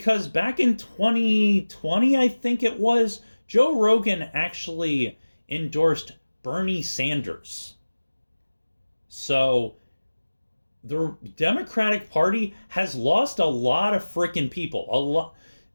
back in 2020, I think it was, Joe Rogan actually endorsed Bernie Sanders. So the Democratic Party has lost a lot of freaking people. A lot,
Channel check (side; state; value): both; inverted; correlation -1.00